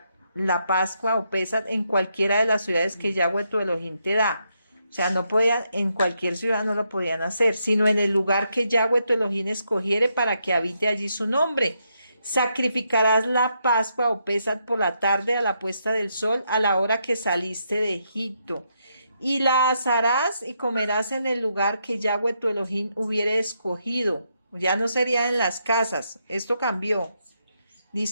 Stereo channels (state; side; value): inverted; both; correlation -0.79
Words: la Pascua o Pesach en cualquiera de las ciudades que Yahweh tu Elohim te da. O sea, no podía, en cualquier ciudad no lo podían hacer, sino en el lugar que Yahweh tu Elohim escogiere para que habite allí su nombre. Sacrificarás la Pascua o Pesach por la tarde a la puesta del sol, a la hora que saliste de Egipto. Y la asarás y comerás en el lugar que Yahweh tu Elohim hubiere escogido. Ya no sería en las casas. Esto cambió.